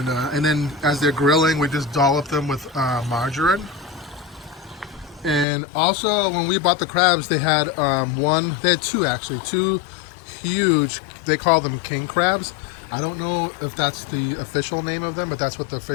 then as they're grilling, we just dollop them with margarine. And also, when we bought the crabs, they had two huge, they call them king crabs. I don't know if that's the official name of them, but that's what the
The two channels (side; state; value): right; drops out; at 5.5 s